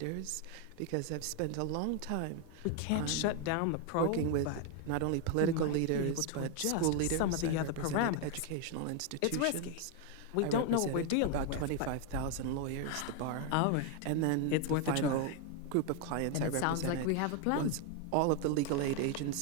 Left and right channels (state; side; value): different; both; correlation 0.01